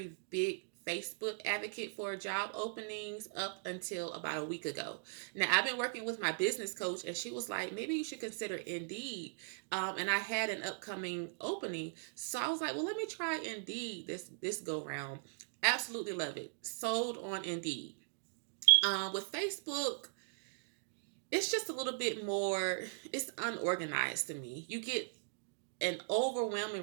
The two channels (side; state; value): left; silent; digital silence